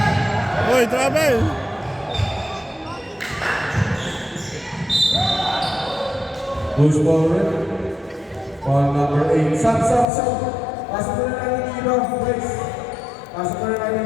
Oi, travel! Goes forward. Ball number 8. Sub. Pasok na natin yung iba, guys. Pasok na natin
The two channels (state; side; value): drops out; right; at 10.1 s